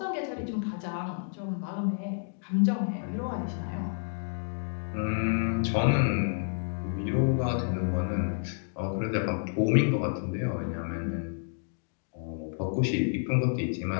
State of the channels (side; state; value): right; silent; digital silence